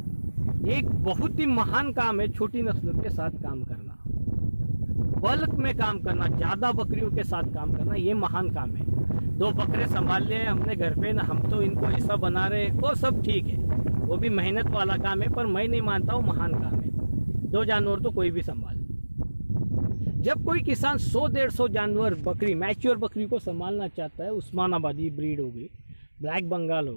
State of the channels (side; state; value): both; inverted; correlation -1.00